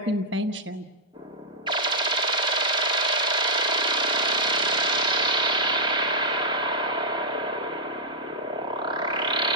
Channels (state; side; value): normal; both; correlation -0.08